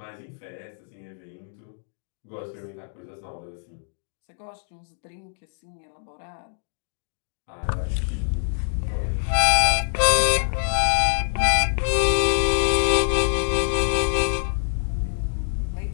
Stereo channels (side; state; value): right; silent; digital silence